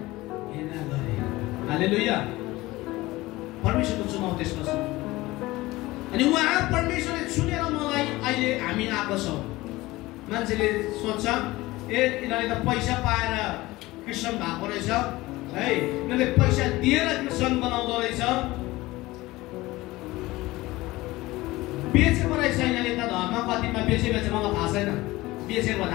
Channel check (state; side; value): quieter; right; 19.4 dB